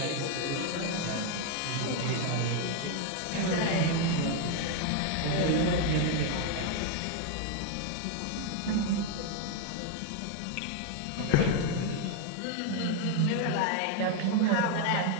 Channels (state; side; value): different; both; correlation 0.01